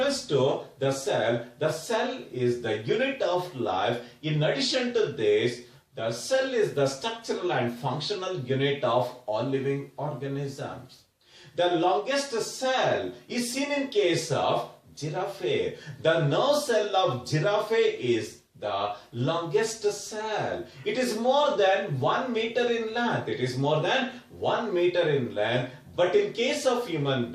to the cell is the unit of life. In addition to this, the cell is the structural and functional unit of all living organisms. The longest cell is seen in case of giraffe. The nerve cell of giraffe is the longest cell. It is more than 1 meter in length. But in case of human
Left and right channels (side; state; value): both; identical; correlation 1.00